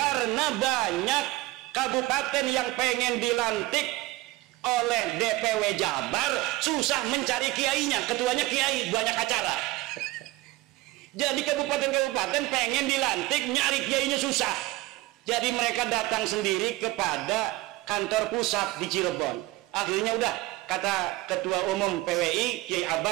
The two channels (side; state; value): left; quieter; 19.4 dB